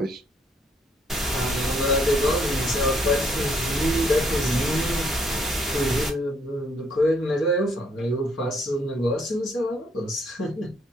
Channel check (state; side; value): normal; both; correlation 0.68